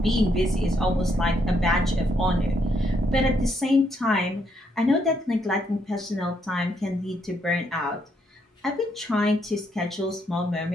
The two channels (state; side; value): normal; both; correlation 0.74